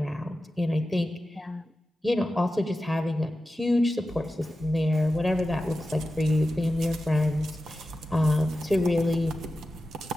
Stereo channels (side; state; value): both; normal; correlation 0.93